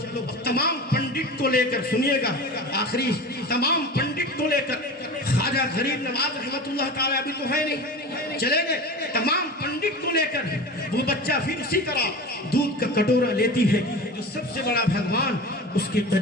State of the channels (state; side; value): normal; both; correlation 0.31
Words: تمام پنڈت کو لے کر سنیے گا، آخری تمام پنڈت کو لے کر خواجہ غریب نواز رحمت اللہ تعالیٰ ابھی تو ہے نہیں، چلے گئے، تمام پنڈت کو لے کر وہ بچہ پھر اسی طرح دودھ کا کٹورا لیتی ہے جو سب سے بڑا بھگوان اس کے